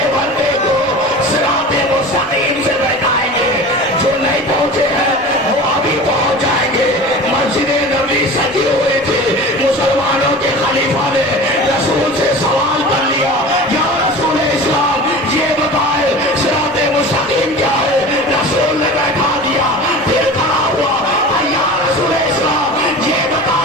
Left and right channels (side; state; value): both; normal; correlation 0.36